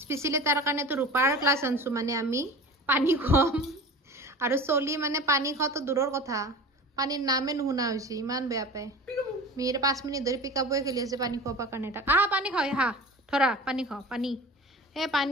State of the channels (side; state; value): both; normal; correlation 0.36